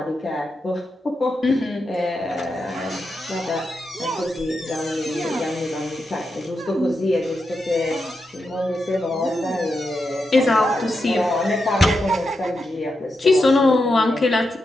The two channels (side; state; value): both; normal; correlation 0.86